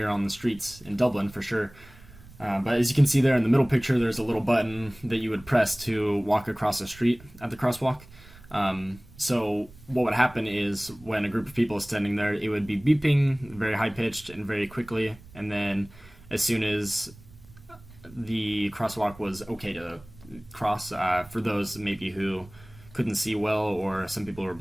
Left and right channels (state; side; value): noise; right; rumble, 22 dB below the sound